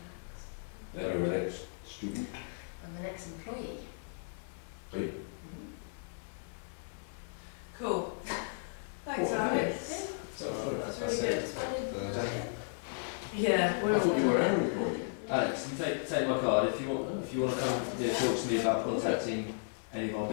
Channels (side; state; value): right; silent; digital silence